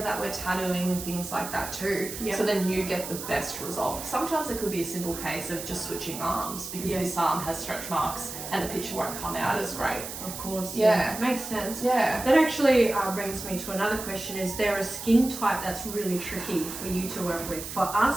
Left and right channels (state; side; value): noise; right; hiss, 9 dB below the sound